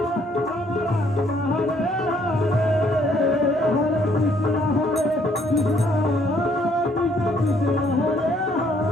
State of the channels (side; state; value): both; normal; correlation 0.66